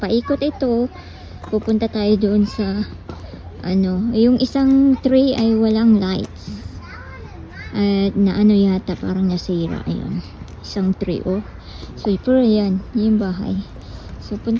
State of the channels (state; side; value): identical; both; correlation 1.00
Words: ito. Pupunta tayo doon sa yung isang tree ay walang lights. At na yata, parang nasira. Ayun. Isang tree, oh. So, pero yan, yung bahay. So,